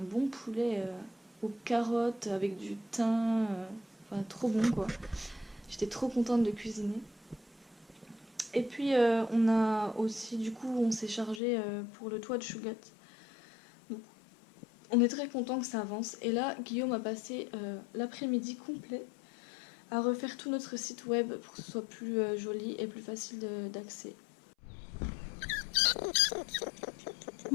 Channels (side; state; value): right; drops out; at 11.4 s